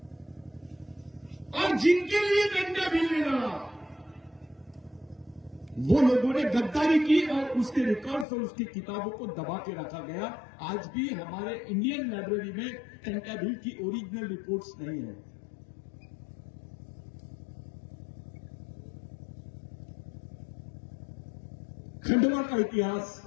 और जिनके लिए कंटेभिल ने लड़ा, वो लोगों ने गद्दारी की और उसके रिकॉर्ड्स और उसकी किताबों को दबा के रखा गया। आज भी हमारे इंडियन लाइब्रेरी में कंटेभिल की ओरिजिनल रिपोर्ट्स नहीं है। खंडवा का इतिहास,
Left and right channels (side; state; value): right; drops out; at 8.2 s